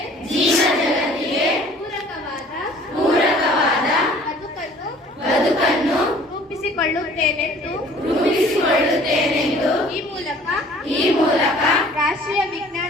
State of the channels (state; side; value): normal; both; correlation 0.52